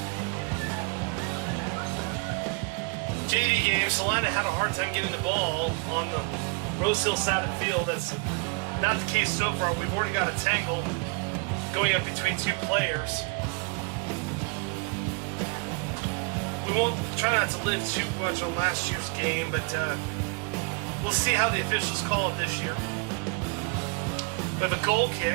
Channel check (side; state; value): left; quieter; 32.9 dB